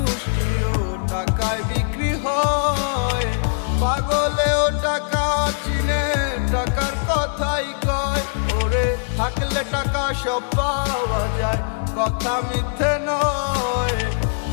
টাকায় বিক্রি হয়। পাগলেও টাকা চিনে, টাকার কথাই কয়। ওরে থাকলে টাকা সব পাওয়া যায়, কথা মিথ্যে নয়।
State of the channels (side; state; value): right; silent; digital silence